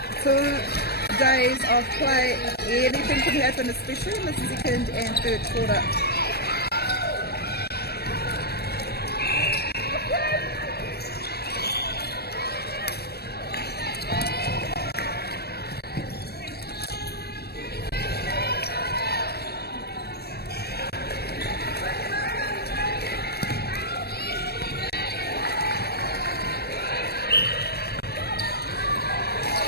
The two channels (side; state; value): right; late; 0.47 ms